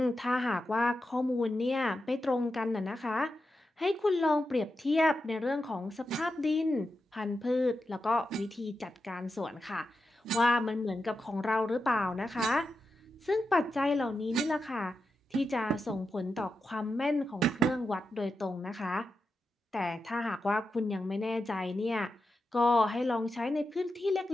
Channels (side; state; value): both; normal; correlation 0.89